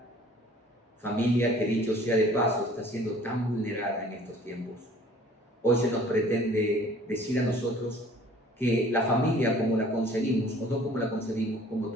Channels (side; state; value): both; normal; correlation 0.52